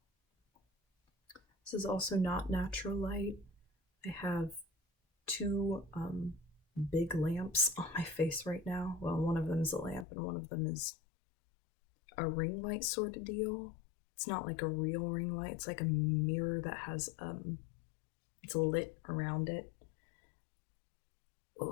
This is also not natural light. I have two big lamps on my face right now. Well, one of them is a lamp and one of them is a ring light sort of deal. It's not like a real ring light. It's like a mirror that has it's lit around it.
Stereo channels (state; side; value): drops out; right; at 10.1 s